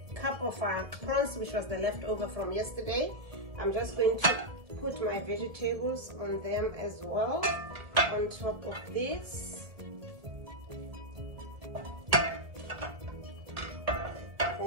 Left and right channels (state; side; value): late; left; 1.7 ms